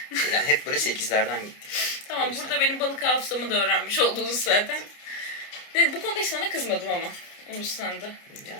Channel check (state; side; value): late; right; 29 ms